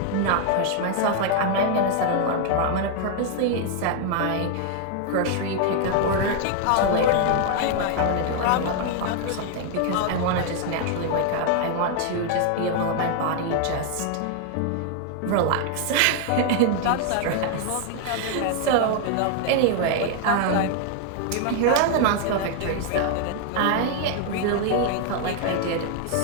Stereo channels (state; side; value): different; both; correlation 0.00